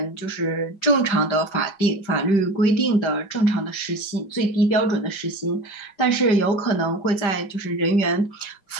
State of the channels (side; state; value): right; late; 5.1 ms